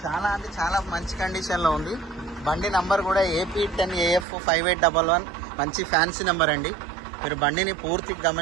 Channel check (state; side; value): drops out; left; at 4.2 s